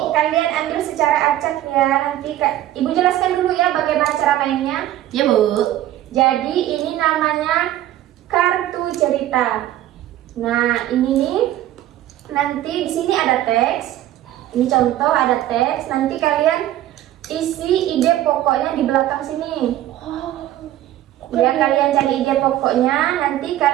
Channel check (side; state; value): left; quieter; 13.5 dB